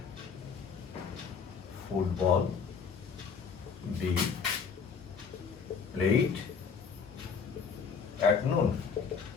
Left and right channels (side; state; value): right; quieter; 5.9 dB